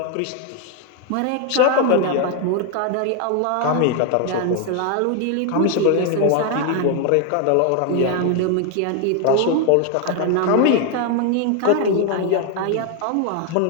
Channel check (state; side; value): different; both; correlation 0.01